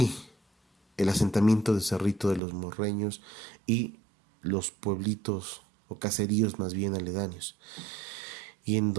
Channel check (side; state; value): left; drops out; at 2.4 s